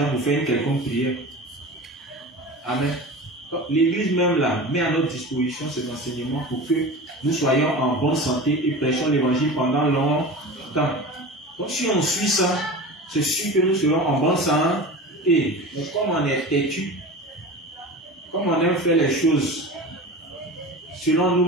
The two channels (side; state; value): both; normal; correlation 0.32